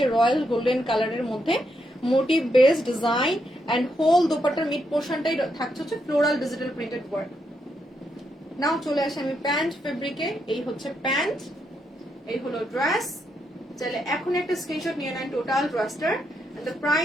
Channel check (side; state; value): both; normal; correlation 0.80